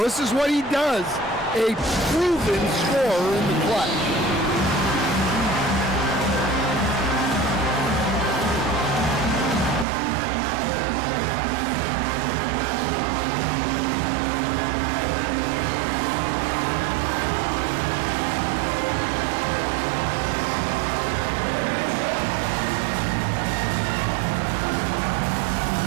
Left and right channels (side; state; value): left; drops out; at 9.9 s